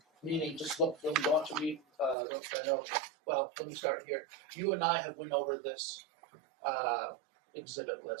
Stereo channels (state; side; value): drops out; left; at 2.1 s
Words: Meaning, just look. When you want to read, those I know. Well, let me start here. You and I have went over this exhibit